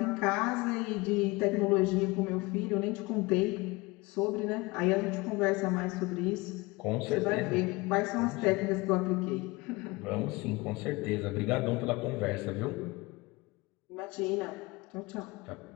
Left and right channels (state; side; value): quieter; right; 23.5 dB